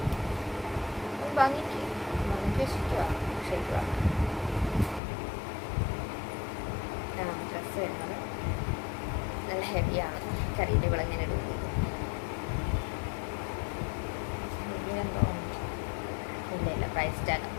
ഭംഗിക്ക് വെച്ചിരിക്കുക. ശരിക്കുക ഡ്രസ്സ് വരുന്നത് നല്ല ഹെവിയാണ്. കറിയുടെ വിളങ്ങനെ ഇടുന്നത് എന്തോ ഇല്ല പ്രൈസ് ടാഗ്.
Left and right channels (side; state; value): right; drops out; at 5.0 s